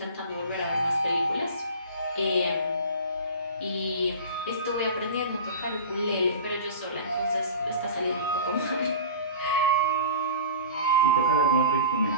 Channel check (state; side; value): inverted; both; correlation -0.35